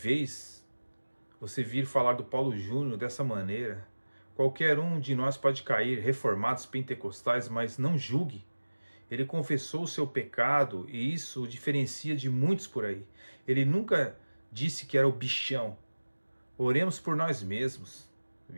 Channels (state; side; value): inverted; both; correlation -1.00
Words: você vir falar do Paulo Júnior dessa maneira. Qualquer um de nós pode cair, reformados pentecostais, mas não julgue. Ele confessou o seu pecado e isso o diferencia de muitos por aí. Ele nunca disse que era o bichão. Oremos por nós mesmos.